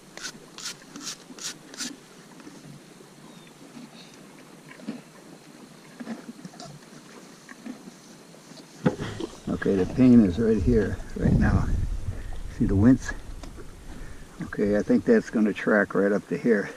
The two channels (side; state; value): both; identical; correlation 1.00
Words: Okay, the pain is right here, right now. See the wince? Okay, I think that's going to track right up to here.